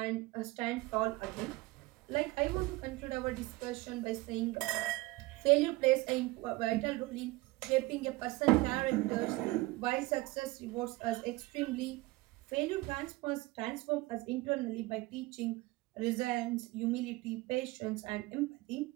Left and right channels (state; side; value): quieter; left; 21.0 dB